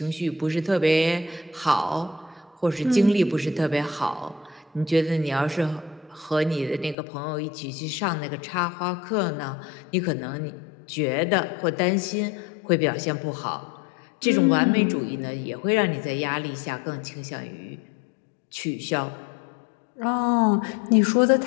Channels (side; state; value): right; drops out; at 7.0 s